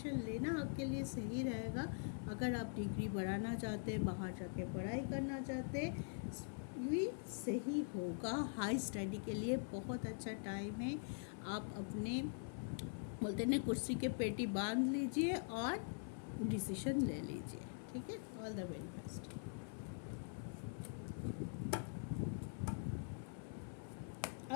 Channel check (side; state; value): right; silent; digital silence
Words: लेना आपके लिए सही रहेगा। अगर आप डिग्री बढ़ाना चाहते हैं, बाहर जाके पढ़ाई करना चाहते हैं, ये सही होगा। हाई स्टडी के लिए बहुत अच्छा टाइम है। आप अपने बोलते हैं कुर्सी के पेटी बांध लीजिए और डिसीजन ले लीजिए, ठीक है। All the very best.